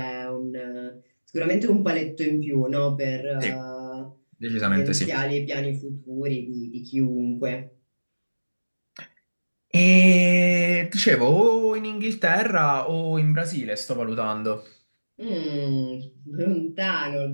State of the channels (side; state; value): both; inverted; correlation -1.00